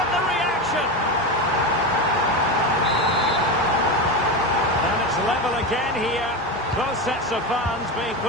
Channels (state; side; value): normal; both; correlation 0.18